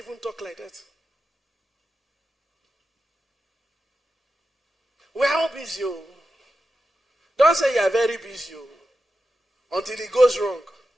talk like that? We're all busy. Oh. Don't say you're very busy. Oh. Until it goes wrong.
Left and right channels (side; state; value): both; normal; correlation 0.90